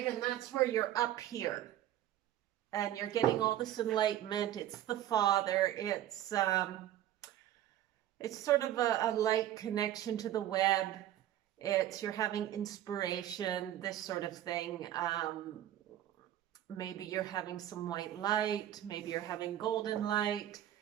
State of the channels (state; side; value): quieter; left; 12.4 dB